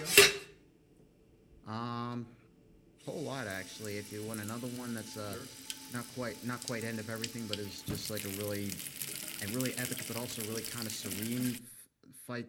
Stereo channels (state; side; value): identical; both; correlation 1.00